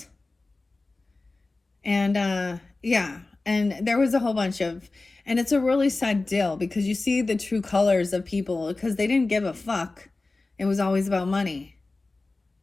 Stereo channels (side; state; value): right; quieter; 3.3 dB